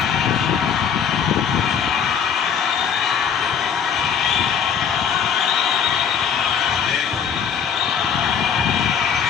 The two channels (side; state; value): right; quieter; 7.4 dB